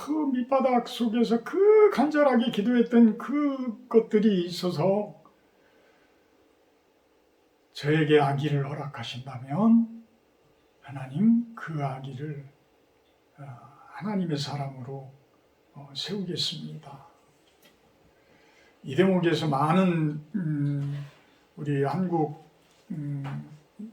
밑바닥 속에서 그 간절하게 기도했던 그 것들이 있어서 저에게 아기를 허락하신다면 하나님 그 아기를 하나님의 사람으로 세우겠습니다. 이 대목에서 많은 우리 한국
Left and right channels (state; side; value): identical; both; correlation 1.00